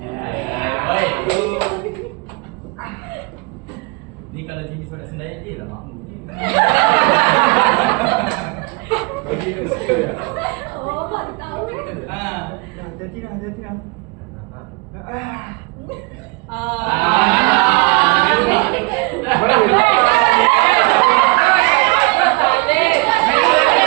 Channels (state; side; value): quieter; left; 27.7 dB